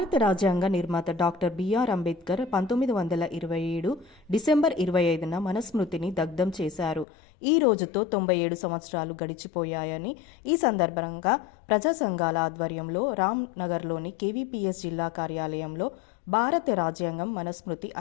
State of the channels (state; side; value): drops out; right; at 7.1 s